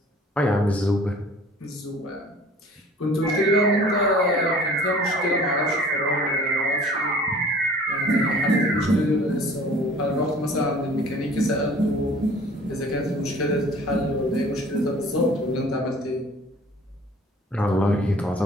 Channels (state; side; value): normal; both; correlation 0.49